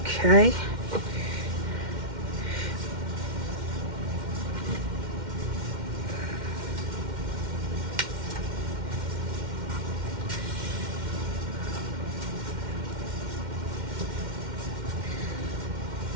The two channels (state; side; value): late; left; 2.1 ms